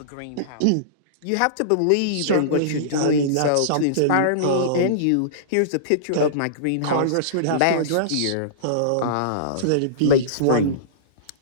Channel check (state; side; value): different; both; correlation -0.03